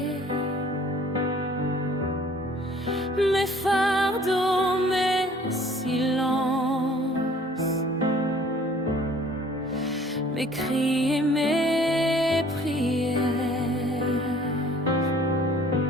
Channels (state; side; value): normal; both; correlation 0.53